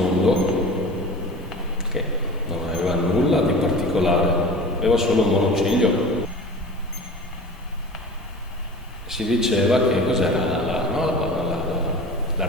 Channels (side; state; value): both; normal; correlation 0.38